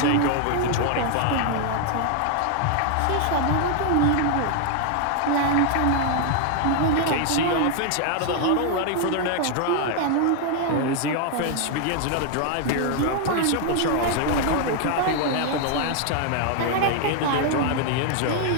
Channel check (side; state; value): both; different; correlation 0.00